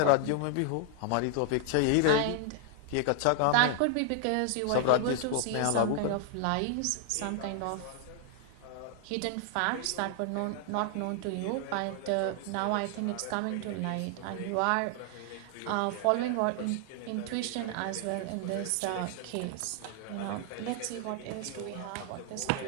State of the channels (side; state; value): both; different; correlation 0.00